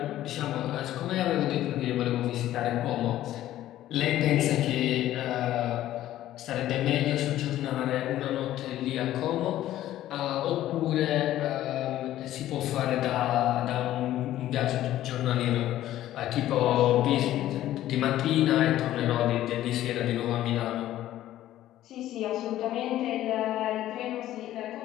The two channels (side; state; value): right; quieter; 13.5 dB